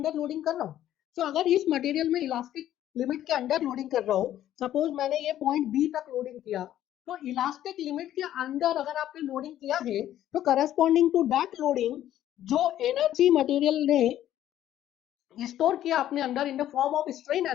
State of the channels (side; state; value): right; quieter; 12.2 dB